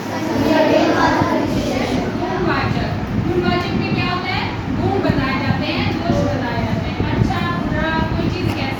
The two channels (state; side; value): identical; both; correlation 1.00